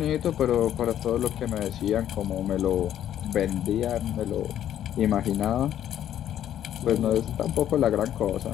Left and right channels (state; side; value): quieter; right; 11.0 dB